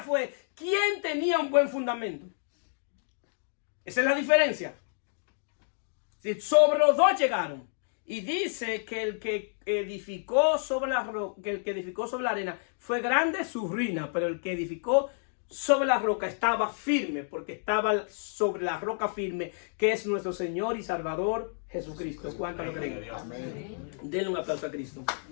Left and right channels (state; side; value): silent; right; digital silence